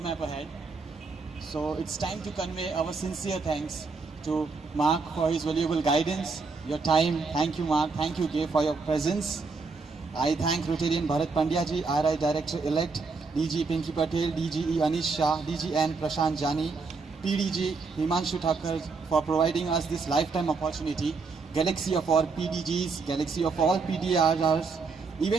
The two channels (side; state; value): left; quieter; 4.5 dB